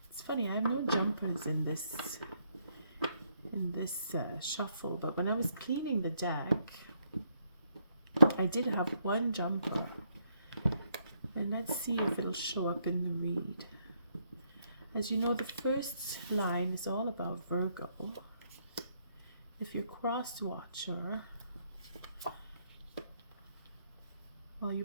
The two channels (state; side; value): inverted; both; correlation -0.74